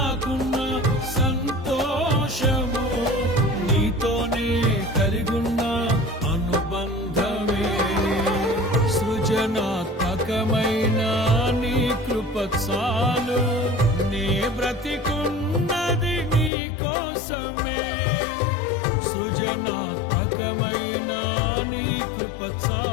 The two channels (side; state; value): right; drops out; at 16.5 s